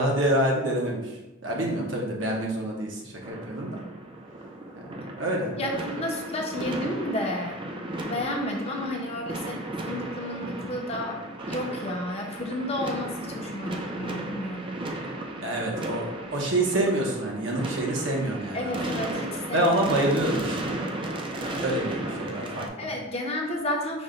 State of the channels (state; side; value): normal; both; correlation 0.29